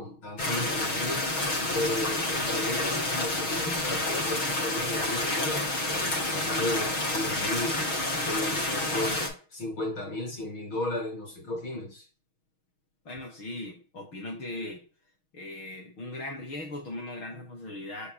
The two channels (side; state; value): right; late; 6.3 ms